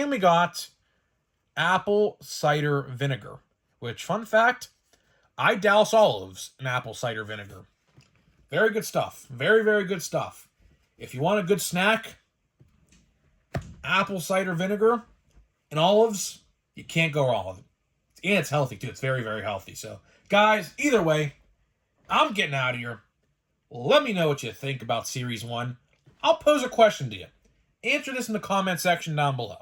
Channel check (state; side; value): identical; both; correlation 1.00